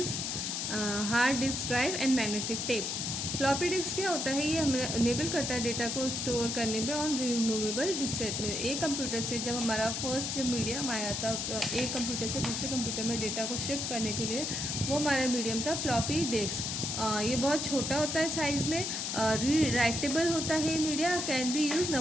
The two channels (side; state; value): left; noise; hiss, 2 dB below the sound